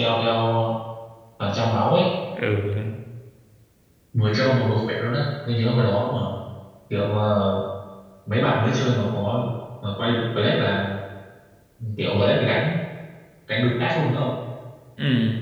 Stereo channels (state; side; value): identical; both; correlation 1.00